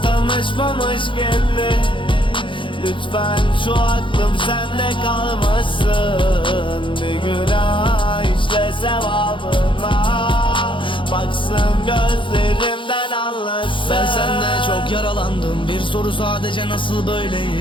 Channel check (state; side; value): late; right; 0.24 ms